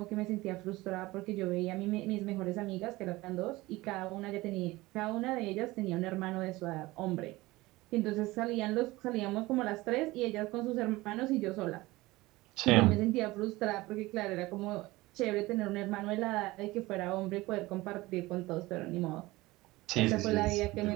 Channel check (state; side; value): quieter; left; 20.0 dB